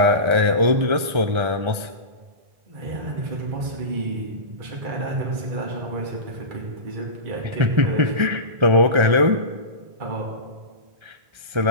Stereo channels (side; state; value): left; late; 1.3 ms